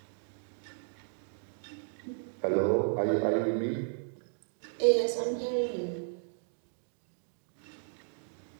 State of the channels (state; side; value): silent; left; digital silence